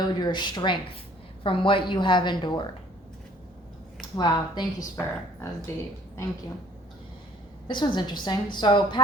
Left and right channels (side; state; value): both; normal; correlation 0.56